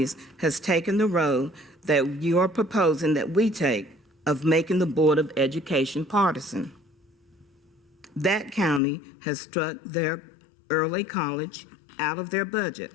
has taken the road that you are proposing that we take of making the Board of Education partisan. That county has struck their early college out of their budget.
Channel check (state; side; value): drops out; right; at 8.8 s